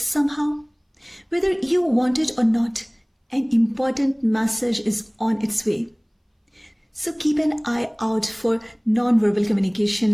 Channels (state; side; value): identical; both; correlation 1.00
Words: Whether you want it or not, an important message is on its way. So keep an eye out for non-verbal